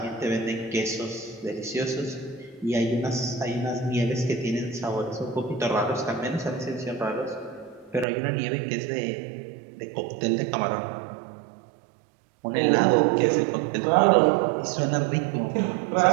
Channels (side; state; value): left; drops out; at 8.1 s